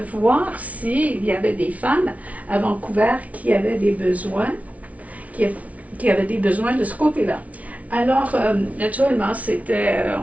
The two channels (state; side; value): late; left; 0.068 ms